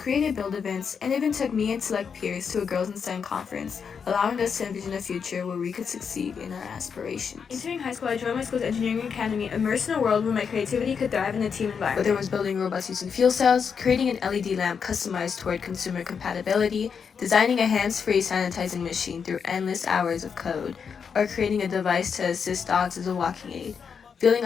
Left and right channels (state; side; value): quieter; right; 6.4 dB